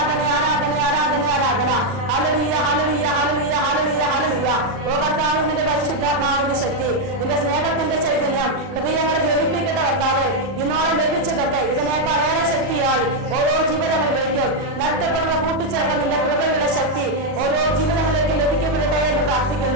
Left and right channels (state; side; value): late; left; 40 ms